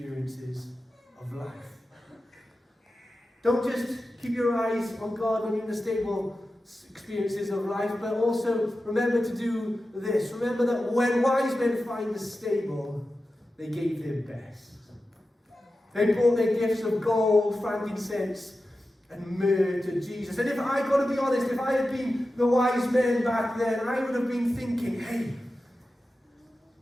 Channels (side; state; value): both; normal; correlation 0.93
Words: of life. Don't just keep your eyes on God when you're in the stable experiences of life, but also remember to do this. Remember that when wise men find the stable, they gave their best. They brought their gifts of gold, frankincense, and myrrh to Jesus. And if I got to be honest, if I had been the wise men back then, I would have been thinking, hey,